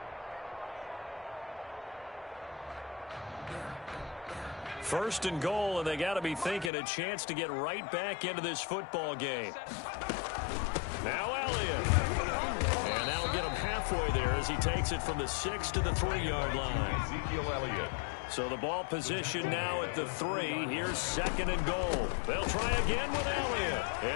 First and goal, and they got to be thinking a chance to get right back into this football game. Now Elliott. And that'll get him halfway there as he takes it from the 6 to the 3-yard line. Ezekiel Elliott. So the ball position now at the 3. Here's second and goal. They'll try again with Elliott.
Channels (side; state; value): right; drops out; at 6.7 s